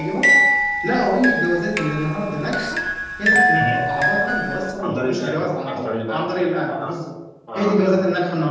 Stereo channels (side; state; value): both; identical; correlation 1.00